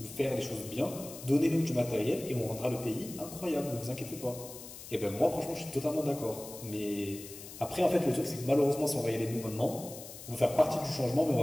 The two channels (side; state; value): left; noise; hiss, 14 dB below the sound